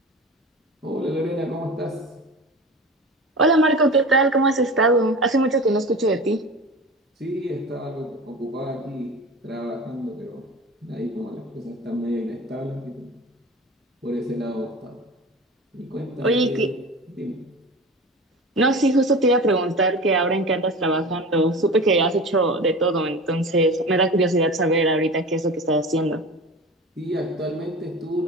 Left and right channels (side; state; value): both; normal; correlation 0.33